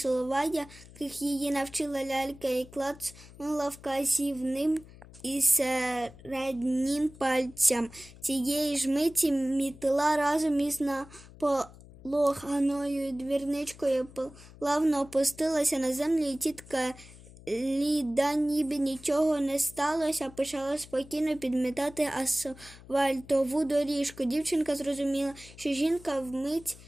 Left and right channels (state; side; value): noise; left; hum, 20 dB below the sound